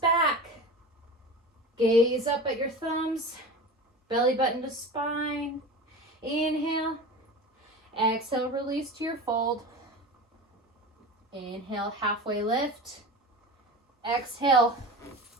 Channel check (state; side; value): normal; both; correlation 0.31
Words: Gaze up at your thumbs, belly button to spine. Inhale, exhale, release to your fold. Inhale, halfway lift. Exhale,